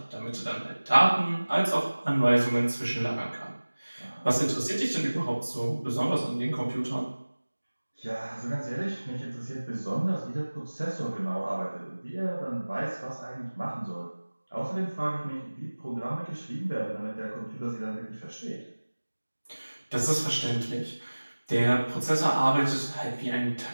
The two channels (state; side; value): inverted; both; correlation -1.00